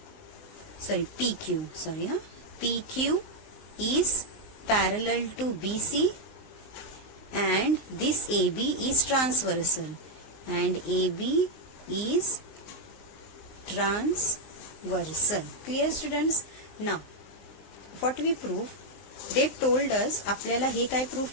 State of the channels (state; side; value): late; right; 19 ms